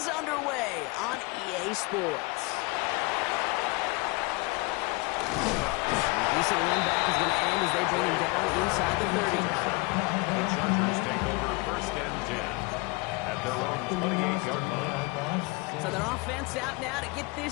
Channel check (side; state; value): right; quieter; 26.2 dB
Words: underway on EA Sports. The decent run back is going to end as they bring him down inside the 30. The Chargers take over first and 10 at their own 28-yard line. So their offense out now to get